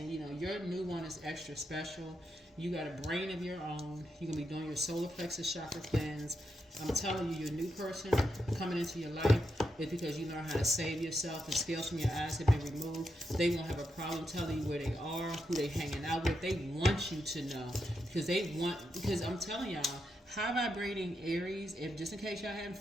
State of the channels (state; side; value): normal; both; correlation 0.84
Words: your new one is extra special. You got a brain of your own. You're going to be doing your solar plexus chakra cleanse. I'm telling you, your new person coming into your life is because you know how to save yourself. The scales from your eyes have been removed. They won't have a problem telling you where they are, who they hanging out with. They want you to know because I'm telling y'all, high vibrating Aries, if just in case y'all haven't